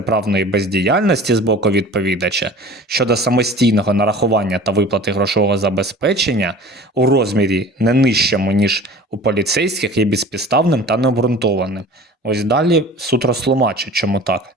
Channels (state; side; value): normal; both; correlation 0.42